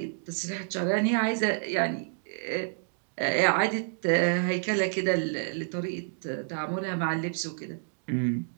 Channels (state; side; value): silent; left; digital silence